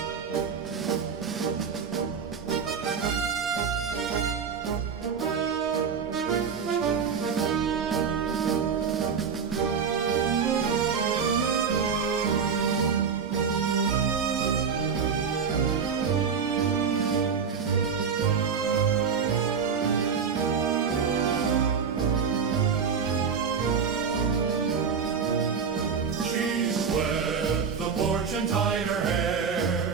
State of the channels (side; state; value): left; quieter; 6.4 dB